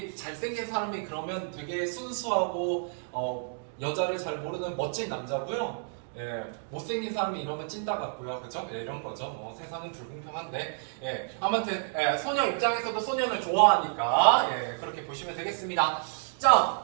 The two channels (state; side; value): silent; left; digital silence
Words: 잘생긴 사람이 그러면 되게 순수하고 여자를 잘 모르는 멋진 남자고요. 못생긴 사람이 이러면 찐따 같고요. 그죠? 이런 거죠. 세상은 불공평한데. 아무튼 소녀 입장에서도 소년을 좋아하니까 그렇게 보시면 되겠습니다.